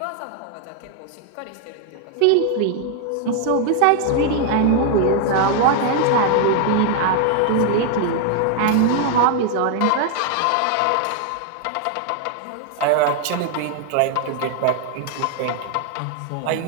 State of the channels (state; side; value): different; both; correlation 0.00